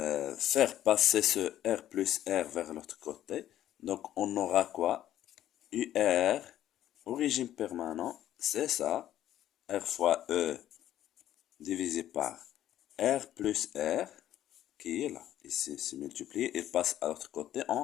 faire passer ce R plus R vers l'autre côté. Donc on aura quoi? UR au régime permanent, c'est ça. R fois E divisé par R plus R qui est là. Ici, c'est multiplié. Il passe à l'autre côté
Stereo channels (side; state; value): right; quieter; 12.2 dB